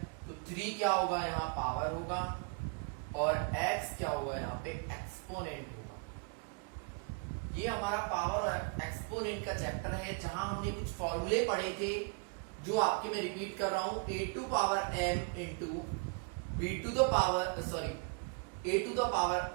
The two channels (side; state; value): left; quieter; 35.0 dB